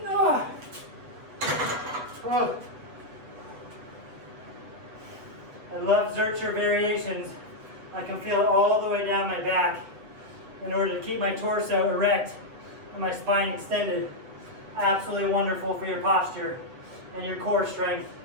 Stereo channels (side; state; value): left; late; 8.0 ms